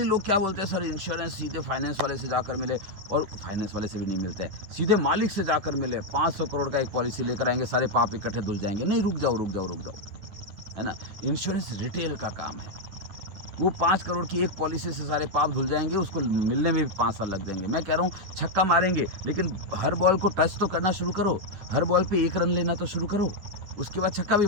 लोग क्या बोलते हैं, सर इंश्योरेंस सीधे फाइनेंस वाले से जाकर मिले, और फाइनेंस वाले से भी नहीं मिलते हैं। सीधे मालिक से जाकर मिले, 500 करोड़ का एक पॉलिसी लेकर आएँगे, सारे पाप इकट्ठे धुल जाएँगे। नहीं, रुक जाओ, रुक जाओ, रुक जाओ, है ना? इंश्योरेंस रिटेल का काम है। वो 5 करोड़ की एक पॉलिसी से सारे पाप धुल जाएँगे, उसको मिलने में भी 5 साल लग जाएँगे। मैं कह रहा हूँ छक्का मारेंगे, लेकिन हर बॉल को टच तो करना शुरू करो। हर बॉल पे 1 रन लेना तो शुरू करो। उसके बाद छक्का भी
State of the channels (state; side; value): late; left; 10 ms